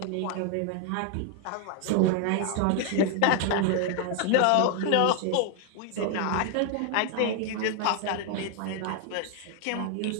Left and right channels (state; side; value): different; both; correlation 0.00